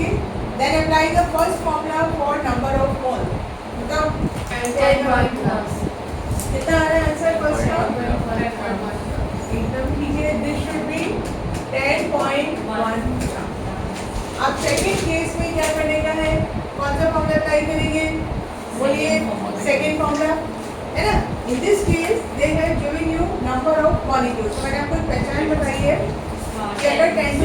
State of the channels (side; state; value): both; identical; correlation 1.00